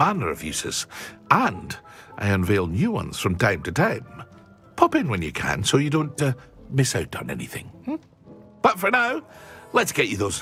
of uses, and I unveil new ones from time to time. Pop in when you can so you don't miss out on anything. But for now, let's get you those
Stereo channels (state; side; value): identical; both; correlation 1.00